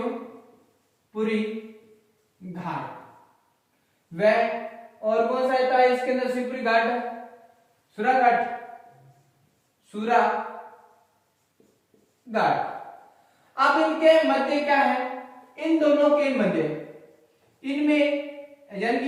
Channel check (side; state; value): both; identical; correlation 1.00